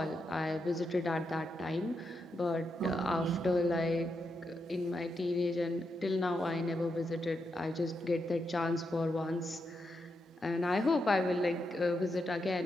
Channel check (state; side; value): normal; both; correlation 0.84